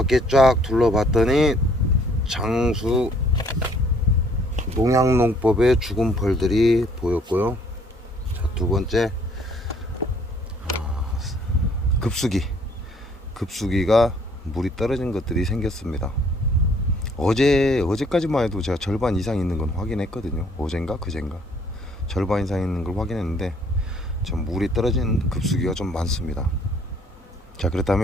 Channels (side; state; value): both; normal; correlation 0.61